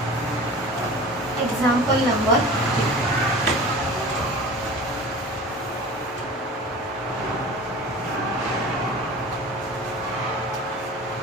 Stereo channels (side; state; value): both; normal; correlation 0.38